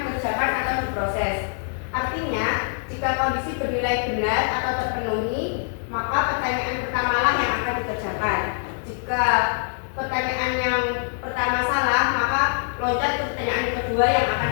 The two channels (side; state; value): right; silent; 63 dB below the other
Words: dikerjakan atau diproses. Artinya, jika kondisi bernilai benar atau terpenuhi, maka pertanyaan pertamalah yang akan dikerjakan. Jika pertanyaan yang pertama salah, maka loncat ke pertanyaan kedua yang akan